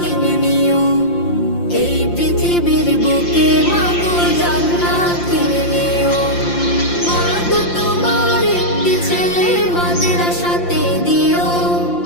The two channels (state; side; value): late; right; 5.8 ms